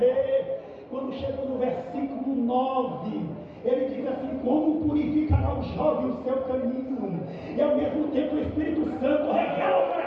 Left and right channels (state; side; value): identical; both; correlation 1.00